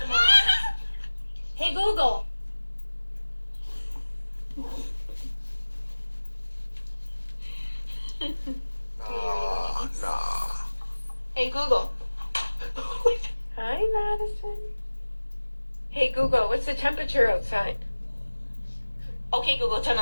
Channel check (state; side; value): inverted; both; correlation -1.00